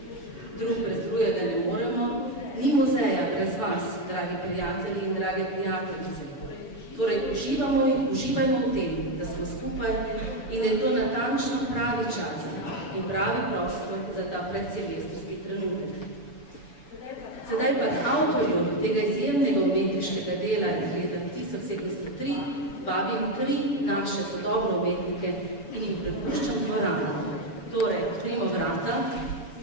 Drug brez drugega ne moremo, ni muzeja brez vas, dragi prijatelji in drage prijateljice. Torej, uživajmo v tem, da smo skupaj in da je to natančno pravi čas in pravi prostor za ta predsilvestrski trenutek. Sedaj pa k avtorju tega izjemnega umetniškega dela iz leta 1703 vabim 3 naše sodobne umetnike in jim prepuščam dvorano. Torej, odprimo vrata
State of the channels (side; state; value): right; late; 7.1 ms